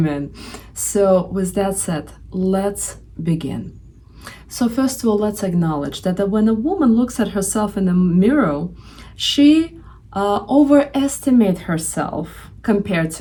So, with that said, let's begin. So, first of all, let's acknowledge that when a woman looks at herself in the mirror, she overestimates herself compared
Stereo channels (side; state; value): both; identical; correlation 1.00